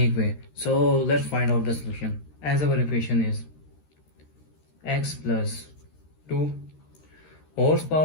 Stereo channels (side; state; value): right; late; 13 ms